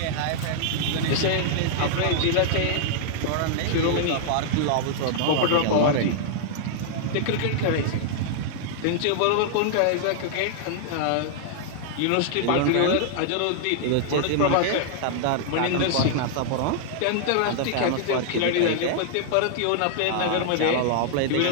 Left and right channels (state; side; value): different; both; correlation -0.01